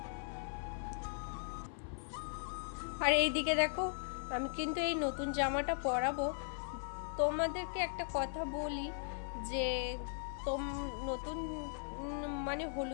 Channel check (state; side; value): silent; right; 52 dB below the other